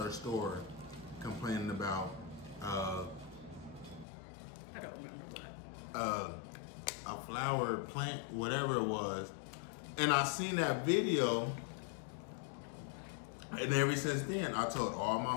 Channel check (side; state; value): right; drops out; at 4.0 s